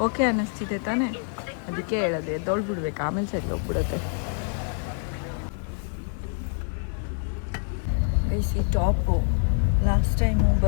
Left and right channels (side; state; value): right; silent; 56 dB below the other